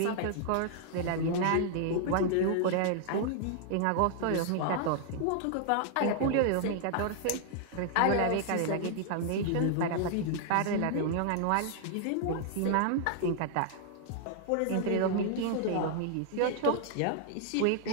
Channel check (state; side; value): different; both; correlation -0.01